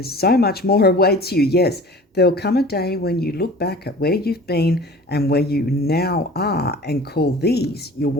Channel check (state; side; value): normal; both; correlation 0.42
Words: so much more awaits you. Yes, there'll come a day when you look back at where you've been and where you now are and call these your